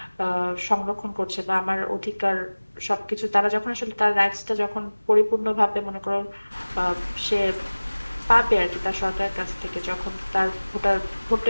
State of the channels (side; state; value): both; inverted; correlation -1.00